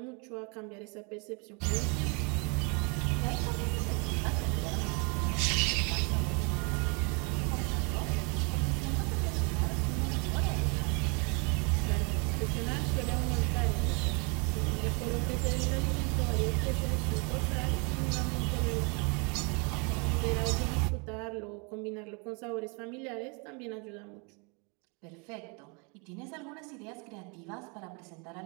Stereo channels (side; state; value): left; quieter; 33.0 dB